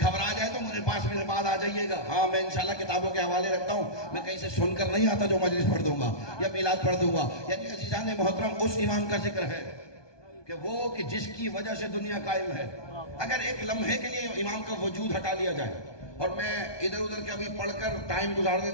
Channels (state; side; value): late; right; 1.2 ms